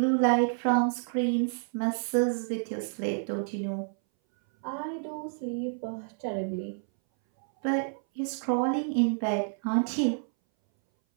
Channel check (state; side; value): silent; left; 58 dB below the other